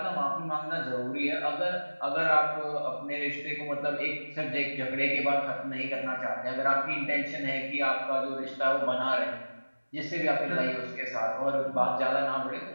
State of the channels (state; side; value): inverted; both; correlation -1.00